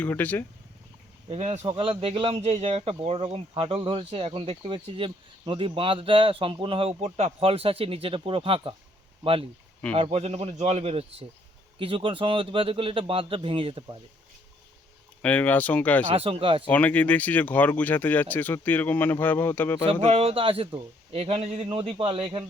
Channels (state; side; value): normal; both; correlation 0.66